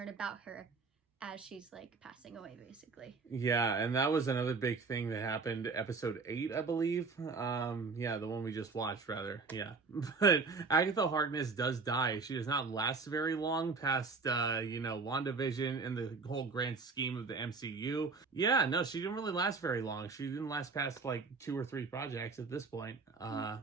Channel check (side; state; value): left; quieter; 4.4 dB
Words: about her as she's like passing away, basically. Yeah, and that was another big thing that happened episode 8, I believe. Yeah, the one we just watched, rather. Yeah. But Agatha Harkness does die. She does not last very long past, WandaVision and the whole grand scheme of the MCU. Yeah, no, she didn't really last very long. She didn't last past like 2 or 3 projects at this point.